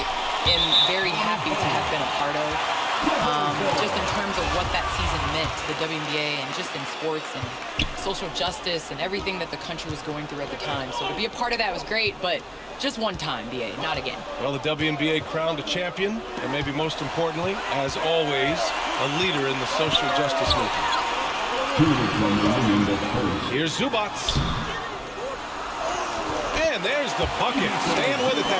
am very happy to have been a part of. Just in terms of what that season meant to the WNBA and just in sports and social justice and everything that the country was going through at the time. So to be a part of that was great, but just one time, BA, not again. Well, the WNBA crowned a champion, and maybe most importantly, as always, a leader in the social justice movement. Here's Zubac. And there's the bucket. Staying with it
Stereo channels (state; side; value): identical; both; correlation 1.00